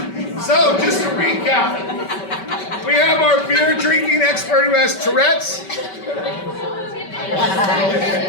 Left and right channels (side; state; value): right; late; 5.2 ms